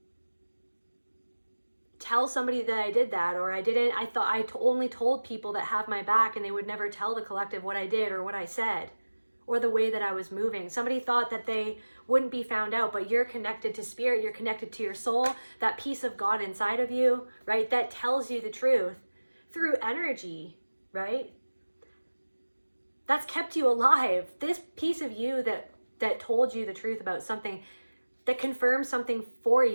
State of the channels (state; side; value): inverted; both; correlation -1.00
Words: tell somebody that I did that, or I thought I only told people that have my back, and they would never tell the collective what I did or what I said or the way that I was moving. Somebody thought that they wouldn't be found out, but you're connected to spirit, you're connected to your soul, that piece of God inside of you, right? That tells you the truth through energy, right? That's kept you alive. This piece of you that that told you the truth about something, that confirmed something for